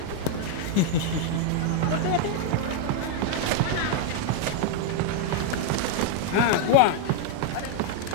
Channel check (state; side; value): different; both; correlation 0.00